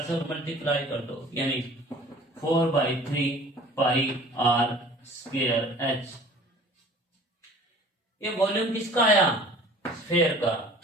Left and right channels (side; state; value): both; normal; correlation 0.47